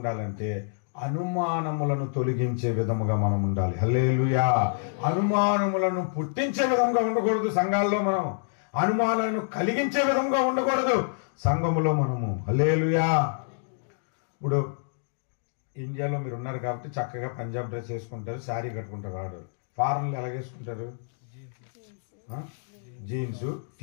అనుమానములను తొలగించే విధముగా మనం ఉండాలి. హల్లెలూయా. అనుమానములను పుట్టించే విధంగా ఉండకూడదు సంఘాల్లో, మనం అనుమానాలను కలిగించే విధంగా ఉండకూడదు సంఘములో మనము. హల్లెలూయా. ఇప్పుడు ఇండియాలో మీరు ఉన్నారు కాబట్టి చక్కగా పంజాబ్ డ్రెస్ వేసుకుంటారు, శారీ కట్టుకుంటారు. వాడు ఫారెన్లో ఎలా వేసుకుంటారు? జీన్స్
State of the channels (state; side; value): silent; right; digital silence